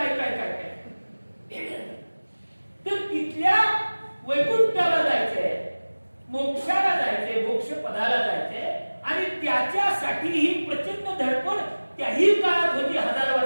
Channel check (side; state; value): both; inverted; correlation -1.00